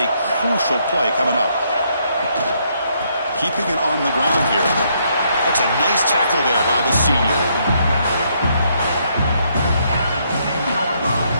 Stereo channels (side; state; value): both; inverted; correlation -0.72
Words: crucial play coming up. Keeping it on the ground here. That's a nice tackle there by the senior.